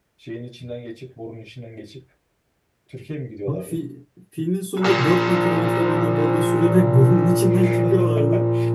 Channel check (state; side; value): identical; both; correlation 1.00